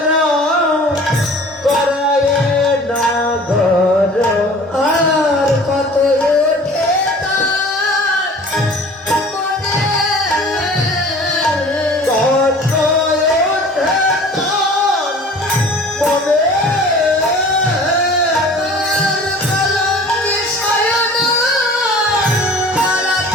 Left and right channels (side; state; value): both; normal; correlation 0.46